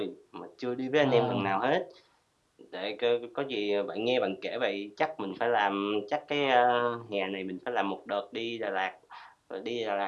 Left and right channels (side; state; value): both; identical; correlation 1.00